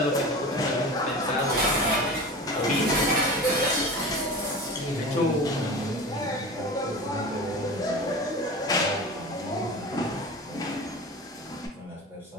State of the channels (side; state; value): both; normal; correlation 0.32